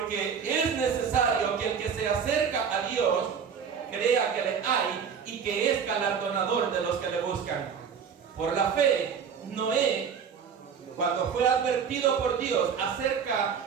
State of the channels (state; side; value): quieter; left; 6.9 dB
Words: es necesario que el que se acerca a Dios crea que le hay y que es galardonador de los que le buscan. Por la fe, Noé, cuando fue advertido por Dios acerca